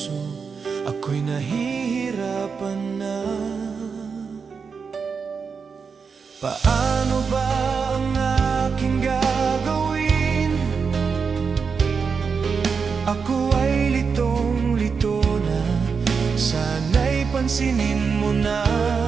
ako'y nahihirapan na. Paano ba ang aking gagawin? Ako ay litong-lito na, sana'y pansinin mo na.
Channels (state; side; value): quieter; left; 5.6 dB